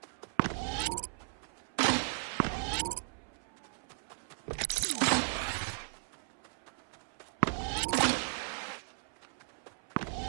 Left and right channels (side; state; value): left; silent; 54 dB below the other